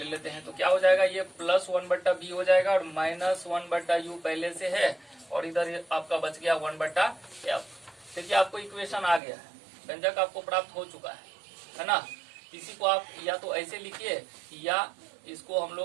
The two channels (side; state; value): left; drops out; at 9.2 s